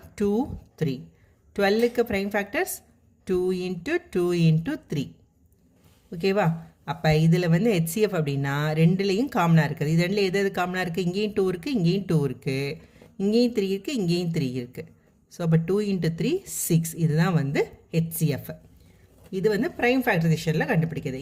2 3. 12க்கு ப்ரைம் ஃபேக்டர்ஸ் 2 × 2 × 3. ஓகேவா? அப்போ இதில் வந்து HCF அப்படின்னா ரெண்டுலேயும் காமனாக இருக்குது. இது ரெண்டில் எது காமனாக இருக்குது? இங்கேயும் 2 இருக்குது, இங்கேயும் 2 இருக்குது, இங்கேயும் 3 இருக்குது, இங்கேயும் 3 இருக்குது. ஸோ அப்போ 2 × 3 6. இதுதான் வந்து HCF. இது வந்து ப்ரைம் ஃபேக்டரைசேஷனில் கண்டுபிடிக்கிறது.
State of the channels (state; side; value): identical; both; correlation 1.00